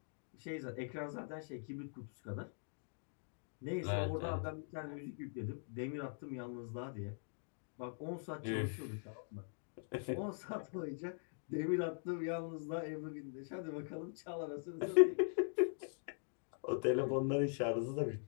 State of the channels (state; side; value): silent; right; digital silence